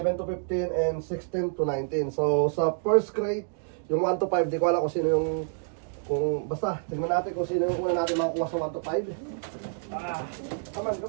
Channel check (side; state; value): left; silent; digital silence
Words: to 15, and 16 to 19. So sa first crate, yung 1 to 5, di ko alam kung sino yung basta, tignan natin kung sino yung una natin makakuha sa 1 to 5. Come on.